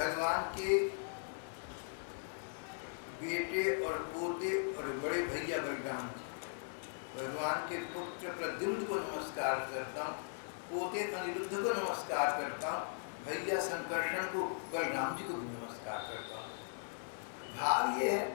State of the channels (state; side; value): silent; right; 52 dB below the other